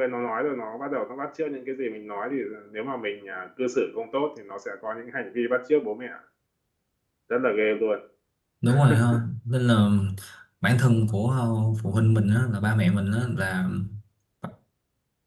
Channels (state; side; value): identical; both; correlation 1.00